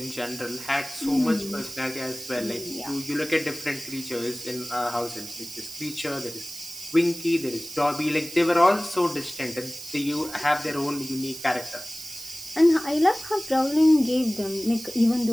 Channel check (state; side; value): noise; right; hiss, 13 dB below the sound